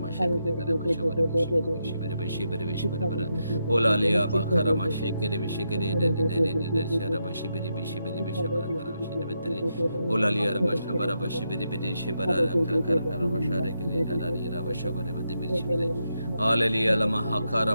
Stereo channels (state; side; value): inverted; both; correlation -0.83